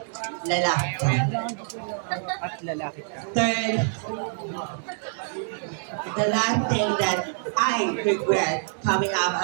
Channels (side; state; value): left; silent; digital silence